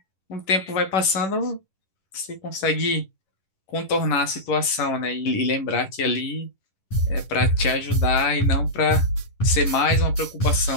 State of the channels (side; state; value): right; late; 10 ms